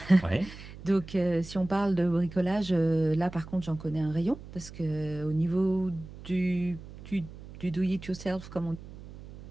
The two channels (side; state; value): right; noise; hum, 15 dB below the sound